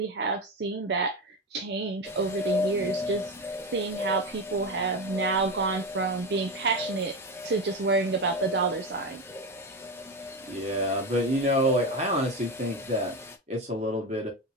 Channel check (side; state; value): both; normal; correlation 0.18